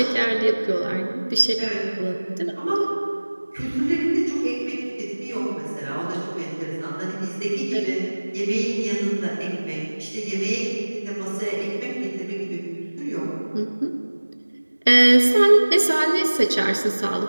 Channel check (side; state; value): both; inverted; correlation -1.00